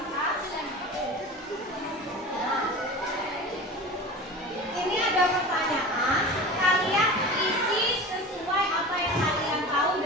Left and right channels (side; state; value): both; normal; correlation 0.34